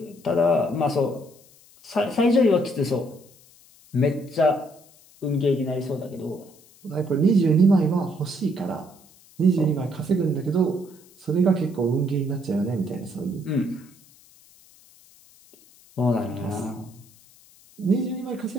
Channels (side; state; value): left; noise; hiss, 27 dB below the sound